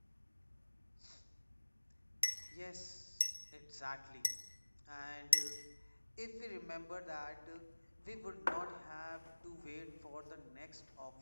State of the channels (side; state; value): both; inverted; correlation -1.00